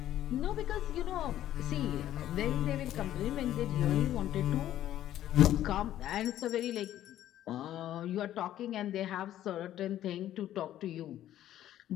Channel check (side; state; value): right; quieter; 12.4 dB